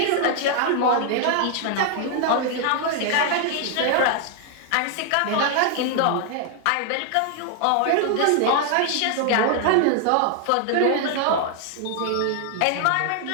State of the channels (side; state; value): both; different; correlation 0.00